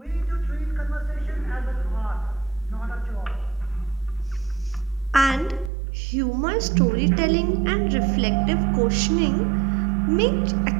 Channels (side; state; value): left; drops out; at 5.7 s